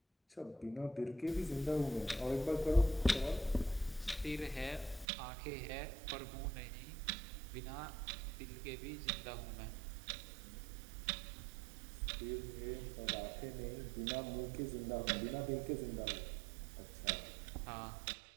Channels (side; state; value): left; drops out; at 5.1 s